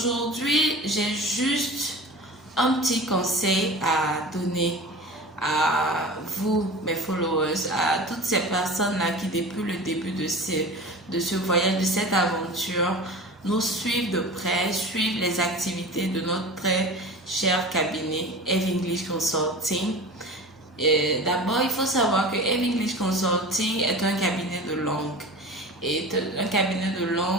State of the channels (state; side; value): normal; both; correlation 0.34